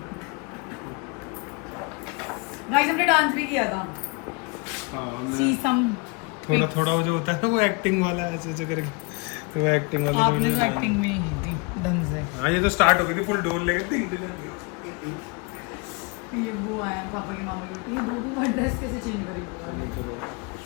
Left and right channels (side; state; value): right; quieter; 30.0 dB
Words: गाइस हमने डांस भी किया था, हाँ हमने सीसम। थोड़ा थोड़ा वो जो होता है ना वो एक्टिंग वाला ऐसे ऐसे करके, तो वो एक्टिंग वाला आपने तो एक्टिंग भी नहीं की थी ढंग से। हाँ ये तो स्टार्ट हो गई थी फुल डोर लेके। ये वो आया पापा की मामा की बेटी, ये दो ड्रेस कैसे चेंज करेगी